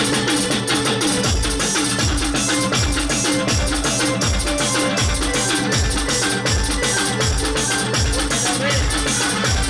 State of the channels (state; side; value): identical; both; correlation 1.00